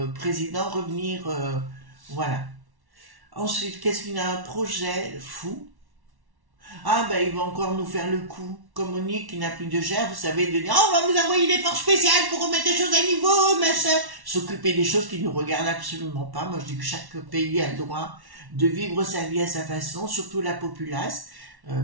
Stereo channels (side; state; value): left; late; 1.1 ms